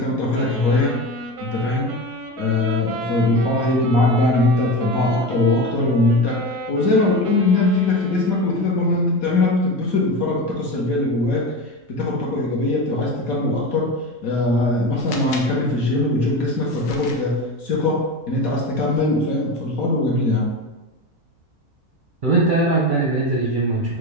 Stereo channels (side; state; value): both; normal; correlation 0.25